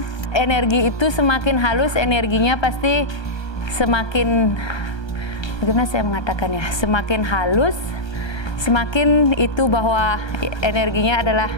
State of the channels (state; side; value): late; right; 1.3 ms